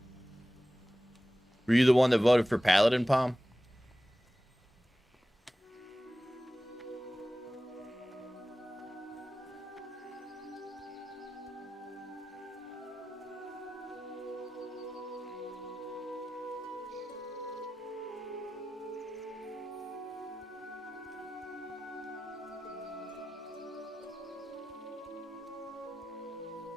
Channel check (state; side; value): normal; both; correlation 0.95